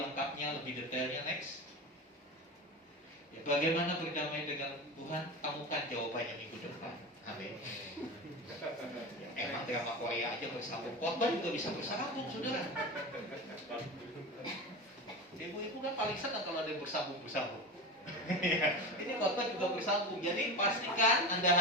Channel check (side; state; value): both; normal; correlation 0.25